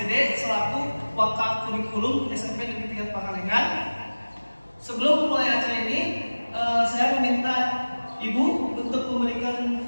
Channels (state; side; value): inverted; both; correlation -1.00